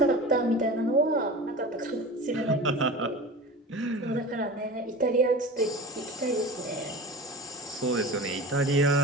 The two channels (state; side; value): normal; both; correlation 0.33